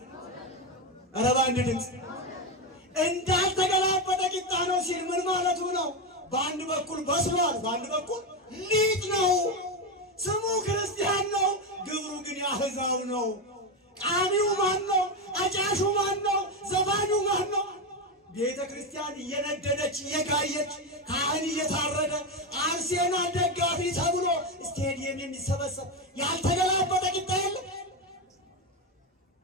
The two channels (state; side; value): normal; both; correlation 0.12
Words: ኧረ በአንድ ድምፅ። እንዳልተገላበጠ ቂጣ ነው ሲል ምን ማለቱ ነው? በአንድ በኩል በስሏል፣ በአንድ በኩል ሊጥ ነው። ስሙ ክርስቲያን ነው፣ ግብሩ ግን የአሕዛብ ነው። ቃሚው ማን ነው? አጫሹ ማን ነው? ዘፋኙ ማን ነው? ቤተ ክርስቲያን እየነደደች እየጋየች ካህን እየታረደ አርሴማ ደጋፊ ተብሎ ስቴዲየም የሚሰበሰብ ያልተገላበጠ ቂጣ የለም።